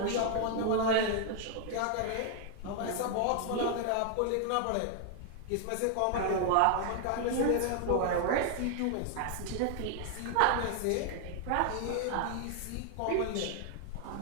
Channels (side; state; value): both; different; correlation 0.00